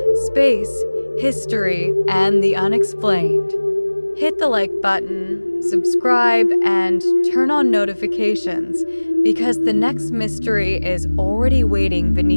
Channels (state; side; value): inverted; both; correlation -1.00